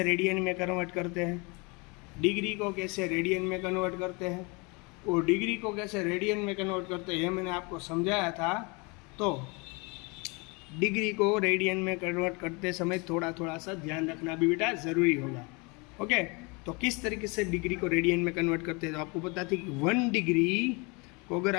रेडियन में कन्वर्ट करते हैं, डिग्री को कैसे रेडियन में कन्वर्ट करते हैं, और डिग्री को कैसे रेडियन में कन्वर्ट करते हैं मैंने आपको समझाया था। तो डिग्री को रेडियन में कन्वर्ट करते समय थोड़ा थोड़ा सा ध्यान रखना भी बेटा ज़रूरी होगा। ओके, तो किस तरीके से डिग्री को रेडियन में कन्वर्ट करते हैं, तो आपको पता थी कि 1 डिग्री को अगर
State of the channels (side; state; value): right; quieter; 29.3 dB